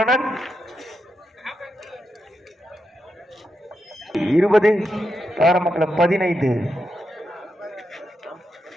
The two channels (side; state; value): both; normal; correlation 0.85